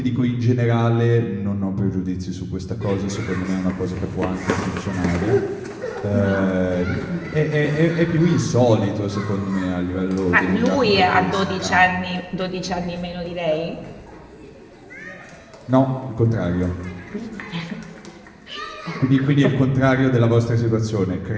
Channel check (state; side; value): identical; both; correlation 1.00